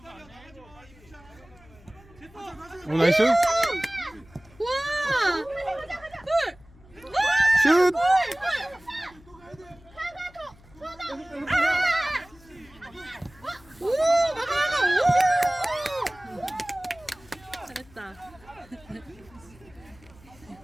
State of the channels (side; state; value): left; noise; hum, 25 dB below the sound